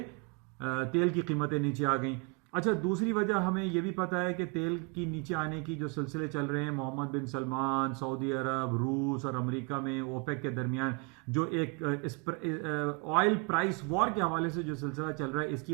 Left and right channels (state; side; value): quieter; left; 33.0 dB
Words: तेल की कीमतें नीचे आ गई। अच्छा, दूसरी वजह हमें यह भी पता है कि तेल की नीचे आने की जो सिलसिले चल रहे हैं, मोहम्मद बिन सलमान, सऊदी अरब, रूस और अमेरिका में ओपेक के दरमियान जो एक ऑयल प्राइस वॉर के हवाले से जो सिलसिला चल रहा है, इसकी